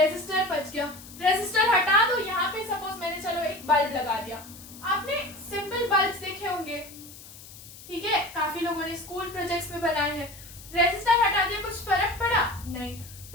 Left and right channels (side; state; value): left; noise; hiss, 17 dB below the sound